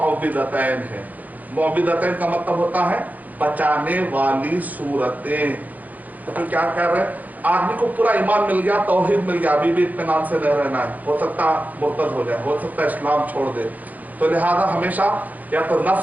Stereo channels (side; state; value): left; late; 0.080 ms